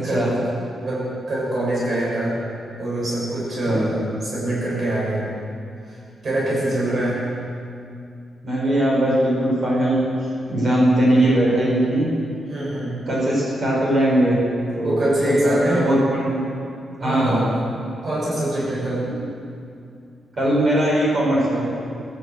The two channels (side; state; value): both; normal; correlation 0.82